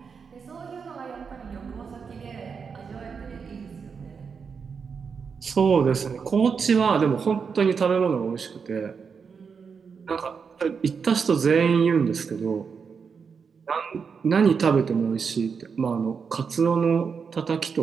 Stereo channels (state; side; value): quieter; left; 5.9 dB